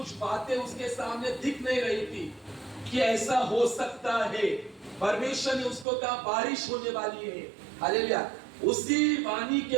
बातें उसके सामने दिख नहीं रही थी कि ऐसा हो सकता है। परमेश्वर ने उसको कहा बारिश होने वाली है। हालेलुया। उसी वाणी के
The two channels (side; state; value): left; drops out; at 5.9 s